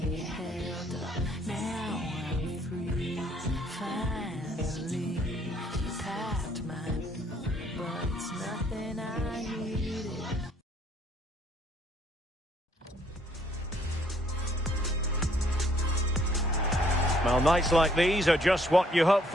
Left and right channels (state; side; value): normal; both; correlation 0.65